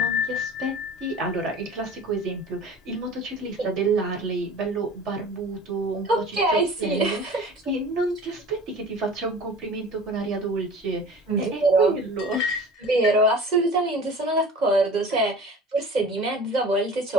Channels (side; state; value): both; normal; correlation 0.40